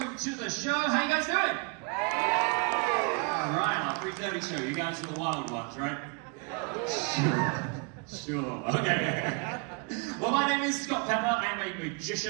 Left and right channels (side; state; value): left; quieter; 32.2 dB